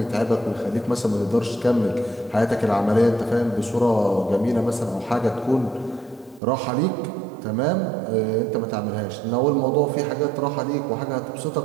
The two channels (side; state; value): left; drops out; at 6.4 s